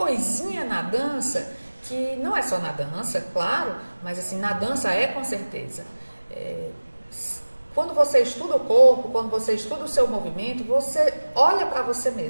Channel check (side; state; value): both; inverted; correlation -1.00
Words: na dança, que não é só na dança, claro, mas assim, na dança com certeza. Quando você estuda o corpo, quando você estuda o seu movimento, você olha para você